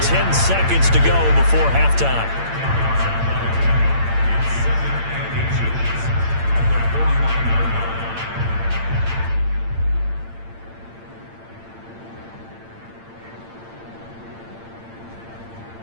10 seconds to go before halftime.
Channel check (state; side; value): late; left; 8.8 ms